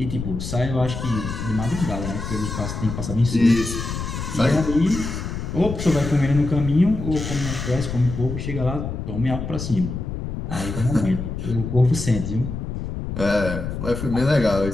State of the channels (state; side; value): noise; left; rumble, 5 dB below the sound